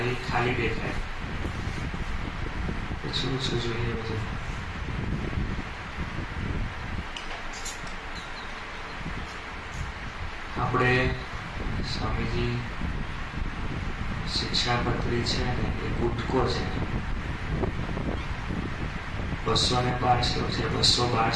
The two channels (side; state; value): both; identical; correlation 1.00